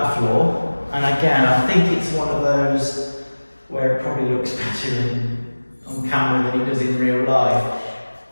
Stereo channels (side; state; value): both; inverted; correlation -1.00